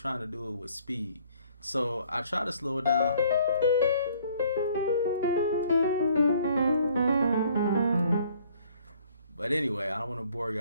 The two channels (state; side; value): inverted; both; correlation -0.60